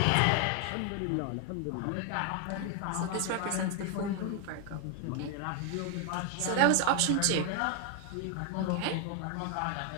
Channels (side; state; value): both; different; correlation 0.01